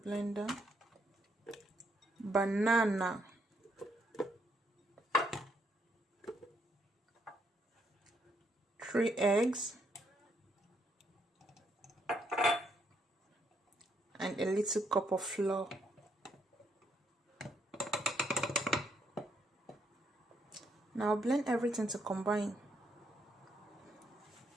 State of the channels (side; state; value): both; normal; correlation 0.74